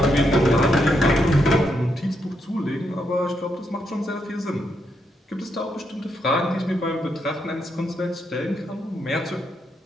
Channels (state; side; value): normal; both; correlation 0.80